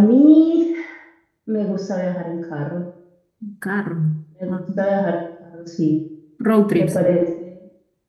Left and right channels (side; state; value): both; identical; correlation 1.00